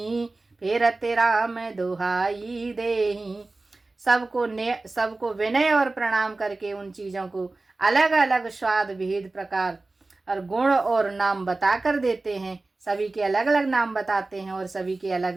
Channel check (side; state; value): left; quieter; 3.3 dB